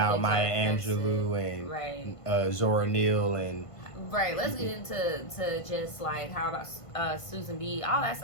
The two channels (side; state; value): right; late; 1.5 ms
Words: Maya Angelou and Zora Neale and. Right, let's get into just like how about Susan B. All that